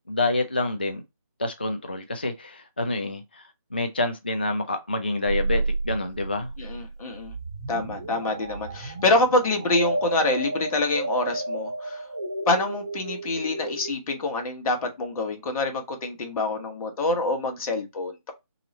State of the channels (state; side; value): inverted; both; correlation -0.34